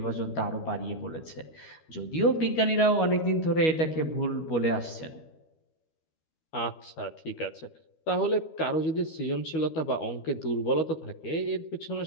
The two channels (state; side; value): late; right; 12 ms